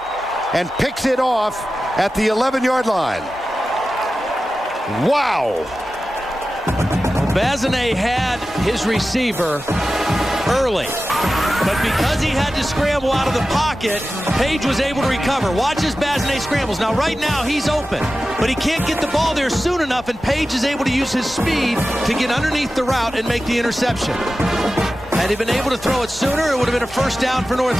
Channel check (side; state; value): both; normal; correlation 0.94